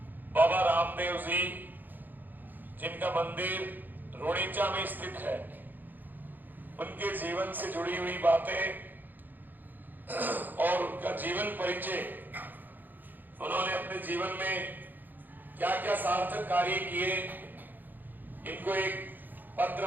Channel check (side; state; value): left; late; 0.087 ms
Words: बाबा रामदेव जी, जिनका मंदिर रोड़ीचा में स्थित है, उनके जीवन से जुड़ी हुई बातें और उनका जीवन परिचय, उन्होंने अपने जीवन में क्या क्या सार्थक कार्य किए, इनको एक पत्र